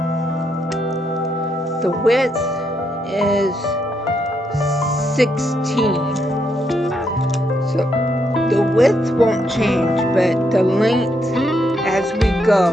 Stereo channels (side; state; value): both; normal; correlation 0.77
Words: The width is 16. So the width won't change, but the length as we go,